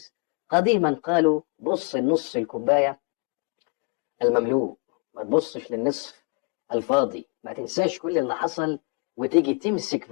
قديما قالوا بص النص الكوبايه المملوء، ما تبصش للنصف الفاضي. ما تنساش كل اللي حصل وتيجي تمسك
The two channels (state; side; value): quieter; right; 34.9 dB